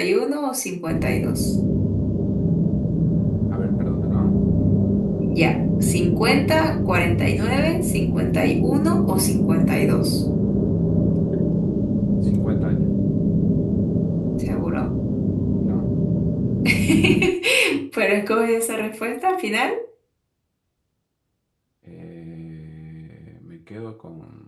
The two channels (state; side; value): identical; both; correlation 1.00